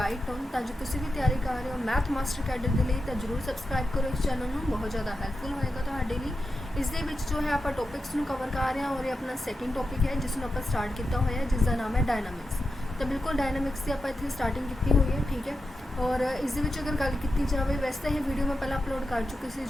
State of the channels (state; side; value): normal; both; correlation 0.89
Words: on. ਤਾਂ ਜੋ ਤੁਸੀਂ ਵੀ ਤਿਆਰੀ ਕਰ ਰਹੇ ਹੋ ਮੈਥ ਮਾਸਟਰ ਕੈਡਰ ਦੇ ਲਈ ਤਾਂ ਜ਼ਰੂਰ ਸਬਸਕ੍ਰਾਈਬ ਕਰੋ ਇਸ ਚੈਨਲ ਨੂੰ। ਬਹੁਤ ਜ਼ਿਆਦਾ ਹੈਲਪਫੁਲ ਹੋਏਗਾ ਤੁਹਾਡੇ ਲਈ। ਇਸ ਦੇ ਵਿੱਚ ਜੋ ਹੈ ਆਪਾਂ ਟੌਪਿਕਸ ਨੂੰ ਕਵਰ ਕਰ ਰਹੇ ਹਾਂ ਔਰ ਇਹ ਆਪਣਾ ਸੈਕਿੰਡ ਟੌਪਿਕ ਹੈ ਜਿਸ ਨੂੰ ਆਪਾਂ ਸਟਾਰਟ ਕੀਤਾ ਹੋਇਆ ਹੈ, ਜਿਸ ਦਾ ਨਾਮ ਹੈ ਡਾਇਨਾਮਿਕਸ। ਤਾਂ ਬਿਲਕੁਲ ਡਾਇਨਾਮਿਕਸ ਦੀ ਆਪਾਂ ਇੱਥੇ ਸਟਾਰਟਿੰਗ ਕੀਤੀ ਹੋਈ ਹੈ, ਠੀਕ ਹੈ। और इस अगर गल की जाए, वैसे तो ये वीडियो मैं पहले अपलोड कर चुकी थी